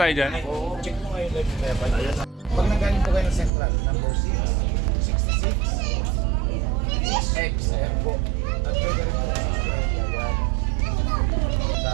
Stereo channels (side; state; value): left; drops out; at 3.5 s